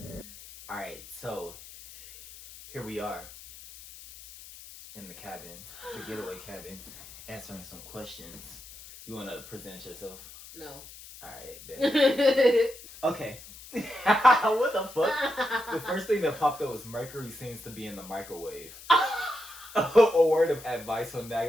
All right, so here we are in the cabin, the getaway cabin, answering some questions. You want to present yourself? No. All right, bet. Okay. What the fuck? The first thing that popped up was mercury seems to be in the microwave. A word of advice on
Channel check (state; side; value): noise; left; hiss, 17 dB below the sound